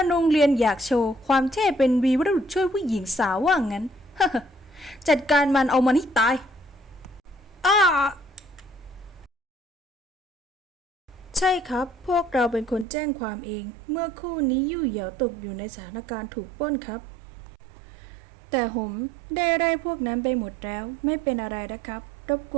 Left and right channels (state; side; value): drops out; left; at 12.9 s